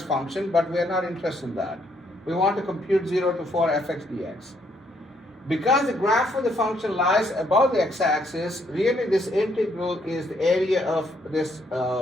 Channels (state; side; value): normal; both; correlation 0.71